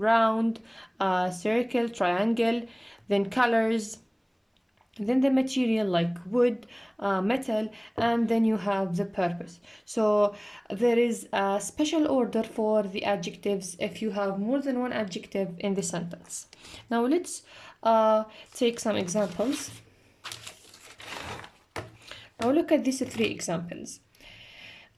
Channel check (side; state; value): both; identical; correlation 1.00